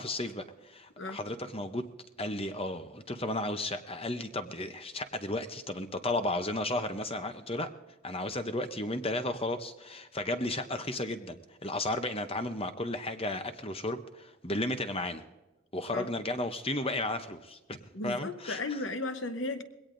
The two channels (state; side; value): normal; both; correlation 0.35